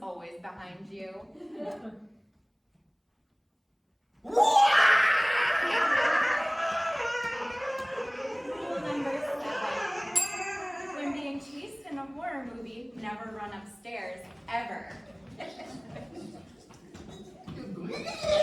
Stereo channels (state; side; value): identical; both; correlation 1.00